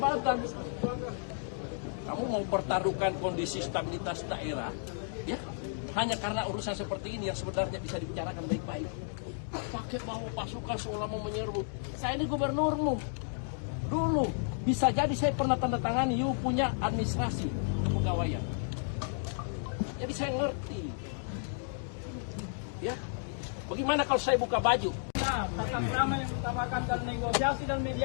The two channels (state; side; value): silent; right; digital silence